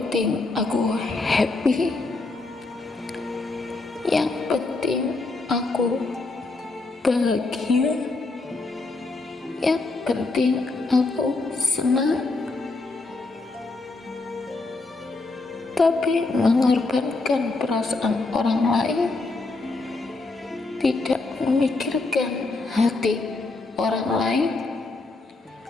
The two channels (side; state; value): right; quieter; 3.4 dB